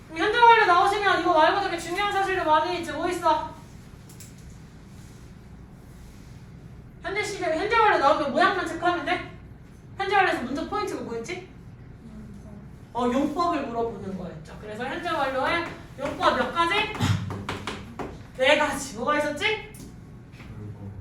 그럼 현재 완료 나오시면 이거 말고 되게 중요한 사실도 많이 있지. 뭐 있어? 현재 시제 현재 완료 나오면 모양만 체크하면 돼? 현재 완료에서 문제 포인트가 뭐였지? 용법을 물어보는 거였죠. 그래서 현재 완료에 용법 몇 가지? 4가지. 뭐가 있었지?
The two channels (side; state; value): both; identical; correlation 1.00